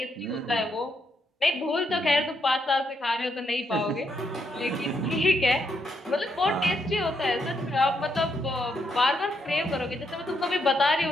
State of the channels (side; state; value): both; normal; correlation 0.78